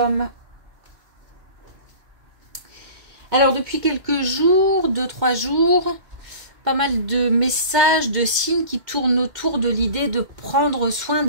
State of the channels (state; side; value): late; left; 2.1 ms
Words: Alors depuis quelques jours, 2-3 jours, pas mal de messages, de signes qui tournent autour de l'idée de prendre soin